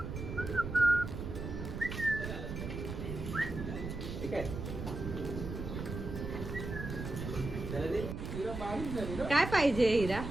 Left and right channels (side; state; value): right; noise; rumble, 6 dB below the sound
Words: काय पाहिजे हिरा.